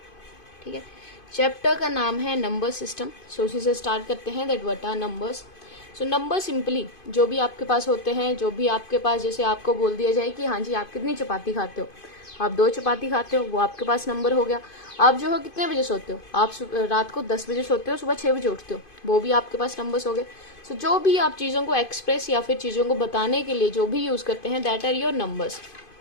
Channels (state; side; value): late; right; 2.5 ms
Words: ठीक है, चैप्टर का नाम है नंबर सिस्टम। सो उसी से स्टार्ट करते हैं, that what are numbers. So number simply जो भी आपके पास होते हैं, जो भी आपके पास, जैसे आपको बोल दिया जाए कि हाँ जी आप कितनी चपाती खाते हो, आप 2 चपाती खाते हो, वो आपके पास नंबर हो गया। आप जो है कितने बजे सोते हो, आप रात को 10 बजे सोते हो, सुबह 6 बजे उठते हो, वो भी आपके पास नंबर्स हो गए। सो जो भी आप चीज़ों को एक्सप्रेस या फिर चीज़ों को बताने के लिए जो भी यूज़ करते हैं, दैट आर योर नंबर्स।